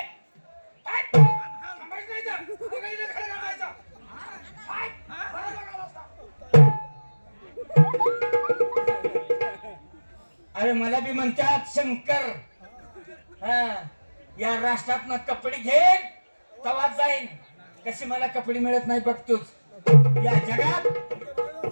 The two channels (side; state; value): both; inverted; correlation -1.00